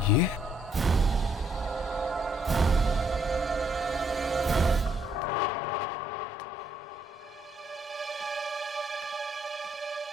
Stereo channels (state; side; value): normal; both; correlation 0.70